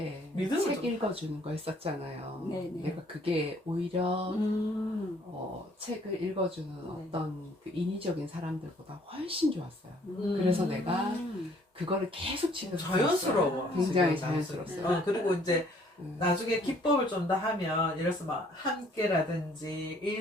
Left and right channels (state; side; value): normal; both; correlation 0.61